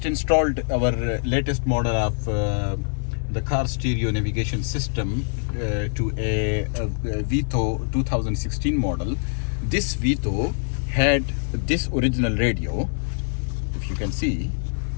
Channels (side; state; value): right; silent; 60 dB below the other